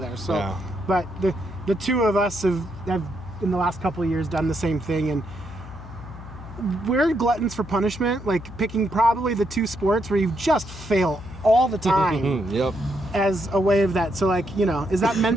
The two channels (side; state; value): left; noise; hum, 14 dB below the sound